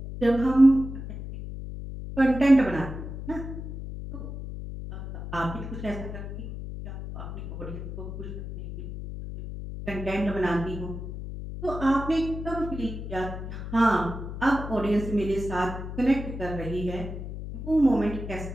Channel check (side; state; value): left; noise; hum, 8 dB below the sound